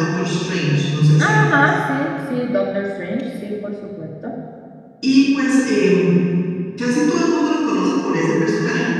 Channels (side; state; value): both; identical; correlation 1.00